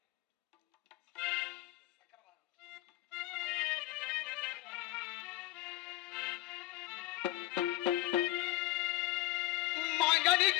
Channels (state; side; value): quieter; right; 16.8 dB